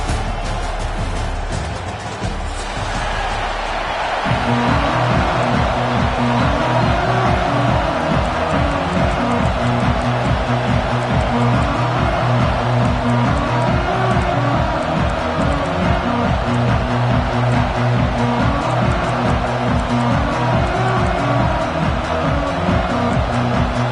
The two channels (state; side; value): identical; both; correlation 1.00